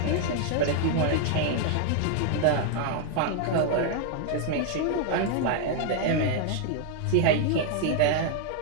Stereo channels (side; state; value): both; different; correlation 0.00